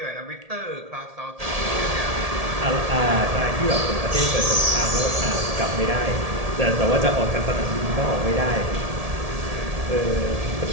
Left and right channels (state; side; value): late; left; 1.7 ms